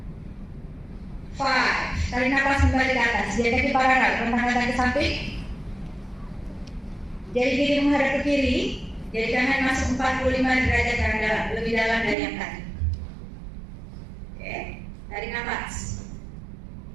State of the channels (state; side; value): drops out; left; at 12.2 s